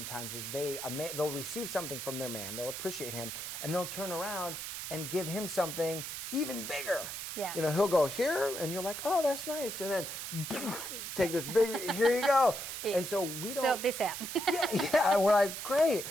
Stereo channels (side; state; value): right; noise; hiss, 6 dB below the sound